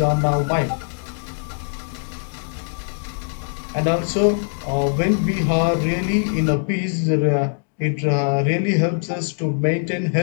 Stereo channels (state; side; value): silent; right; 64 dB below the other